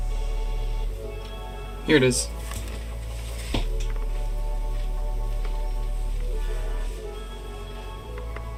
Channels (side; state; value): both; identical; correlation 1.00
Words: Here it is.